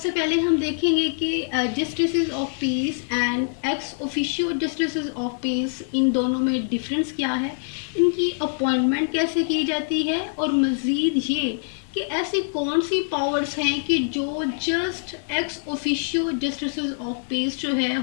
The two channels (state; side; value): silent; right; 62 dB below the other